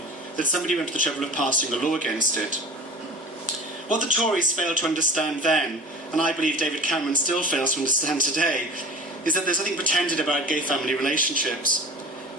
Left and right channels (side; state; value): both; normal; correlation 0.38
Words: that somebody went to the trouble of passing a law against it. What the Tories failed to understand then, and I believe David Cameron still fails to understand today, is that there's nothing pretended about gay family relationships.